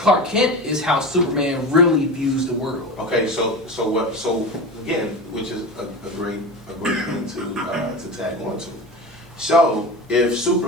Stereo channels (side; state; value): both; normal; correlation 0.27